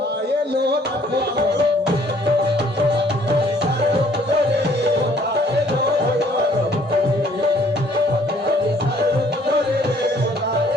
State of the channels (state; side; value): normal; both; correlation 0.61